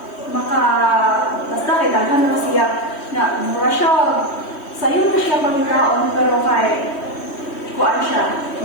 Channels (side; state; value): right; late; 3.1 ms